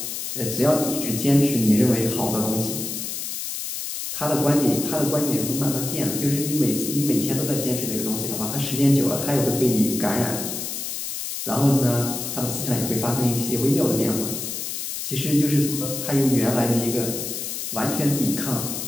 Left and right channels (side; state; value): left; noise; hiss, 5 dB below the sound